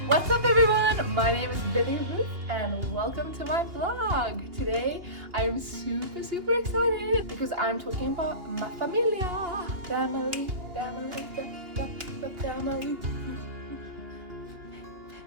What's up everyone? My name is Billy Ruth and welcome to my vlog. Today I am super excited because I'm talking about my familia. Family.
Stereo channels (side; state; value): left; late; 2.8 ms